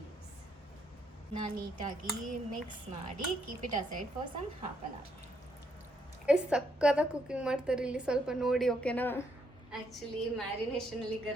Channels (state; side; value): normal; both; correlation 0.74